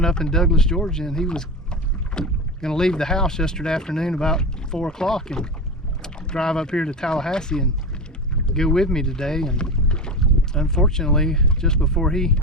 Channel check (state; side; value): normal; both; correlation 0.23